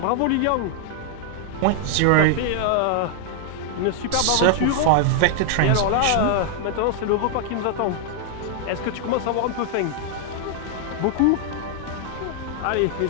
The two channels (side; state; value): both; different; correlation -0.01